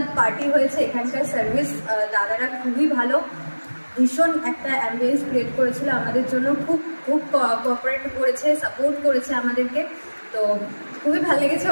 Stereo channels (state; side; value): inverted; both; correlation -1.00